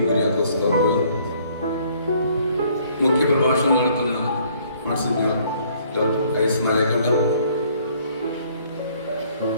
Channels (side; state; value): both; inverted; correlation -0.62